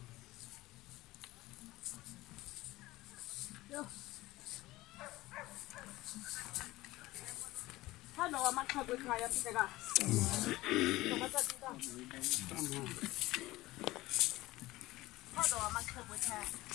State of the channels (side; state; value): right; quieter; 18.3 dB